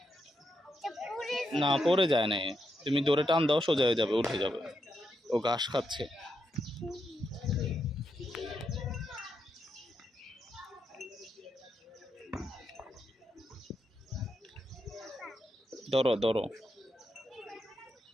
না, পড়ে যায় না, তুমি দৌড়ে টান দাও, সোজা হয়ে যাবে, উঠে যাবে। ও ঘাস খাচ্ছে। ধরো ধরো।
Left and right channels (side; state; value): both; normal; correlation 0.82